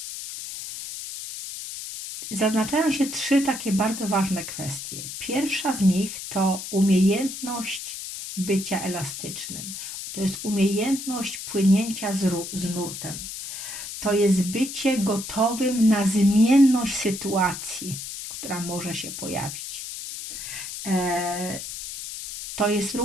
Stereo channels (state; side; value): noise; left; hiss, 8 dB below the sound